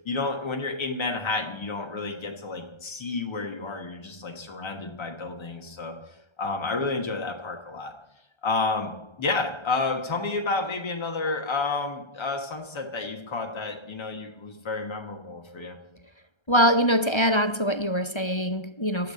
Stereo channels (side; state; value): right; late; 1.3 ms